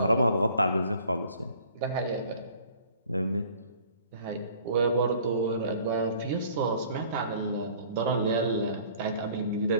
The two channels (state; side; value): inverted; both; correlation -0.52